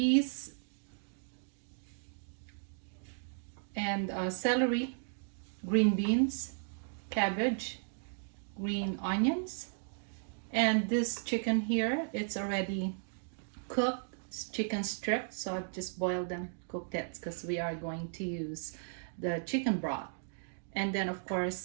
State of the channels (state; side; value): silent; left; digital silence